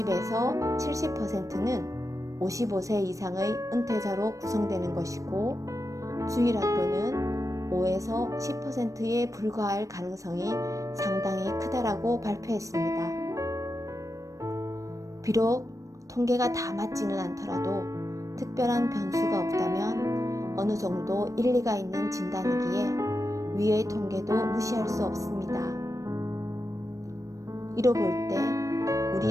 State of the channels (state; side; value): late; left; 0.16 ms